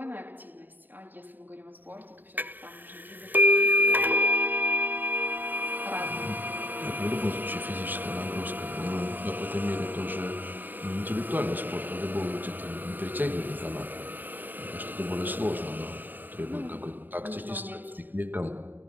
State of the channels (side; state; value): left; late; 0.090 ms